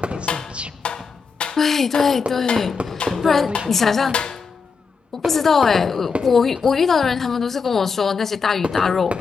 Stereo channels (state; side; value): quieter; right; 5.2 dB